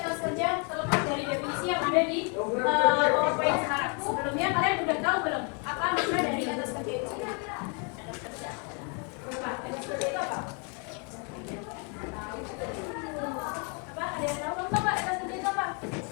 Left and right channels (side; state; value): right; quieter; 36.6 dB